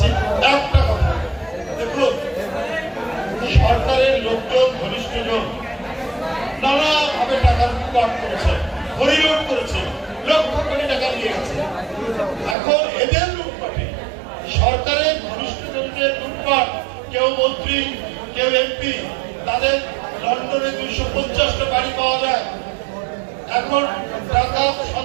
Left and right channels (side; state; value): left; drops out; at 12.6 s